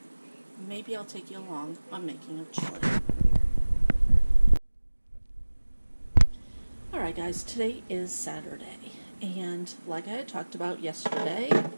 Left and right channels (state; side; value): inverted; both; correlation -1.00